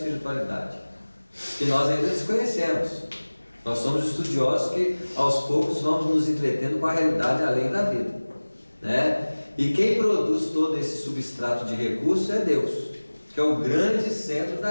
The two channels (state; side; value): inverted; both; correlation -1.00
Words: Que nós ainda desconhecemos. Nós somos estudiosos que aos poucos vamos nos entretendo com a realidade além da vida, né? E quem produz todo esse substrato de recursos é Deus, que é o grande centro